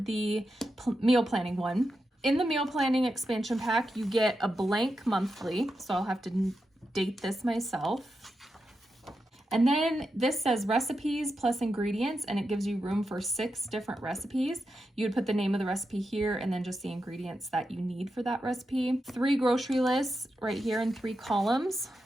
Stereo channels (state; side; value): normal; both; correlation 0.88